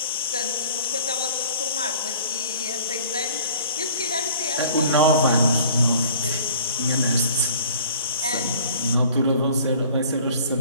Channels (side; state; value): both; inverted; correlation -0.49